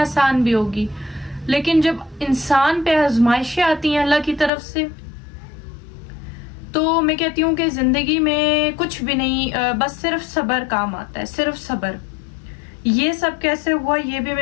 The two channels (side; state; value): right; drops out; at 4.5 s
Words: بھی ہوگی، لیکن جب انسان پہ آزمائشیں آتی ہیں اللہ کی طرف سے، تو میں کہتی ہوں کہ زندگی میں کچھ بھی نہیں، بس صرف صبر کام آتا ہے، صرف صبر. یہ سب کیسے ہوا یہ بھی میں